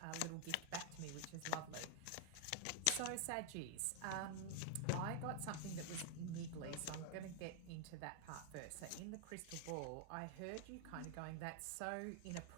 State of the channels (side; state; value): both; different; correlation 0.00